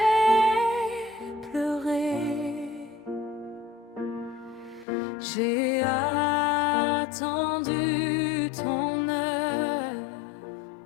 pleuré, j'ai attendu ton heure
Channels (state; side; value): drops out; right; at 4.9 s